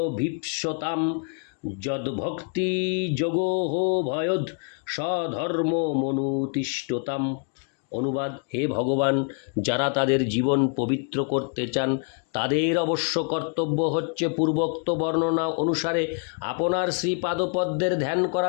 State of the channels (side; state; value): right; quieter; 39.5 dB